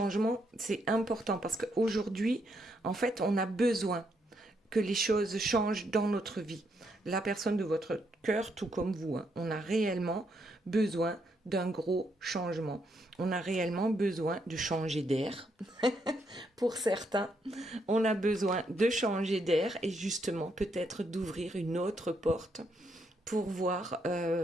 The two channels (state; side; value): normal; both; correlation 0.76